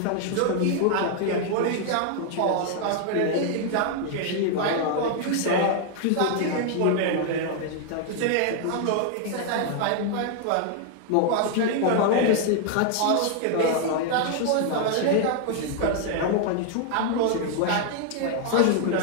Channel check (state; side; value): different; both; correlation 0.00